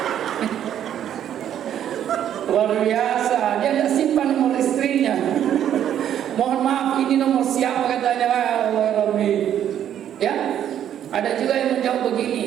Luar biasa, dia tidak simpan nomor istrinya. Mohon maaf, ini nomor siapa katanya? Allah Rabbi. Ya, ada juga yang menjawab begini,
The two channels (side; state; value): left; quieter; 10.2 dB